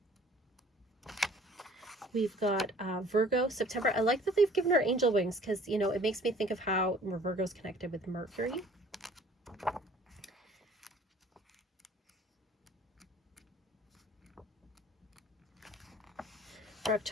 We've got Virgo, September. I like that they've given her angel wings because, it makes me think of how Virgo's connected with Mercury. For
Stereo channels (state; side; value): normal; both; correlation 0.52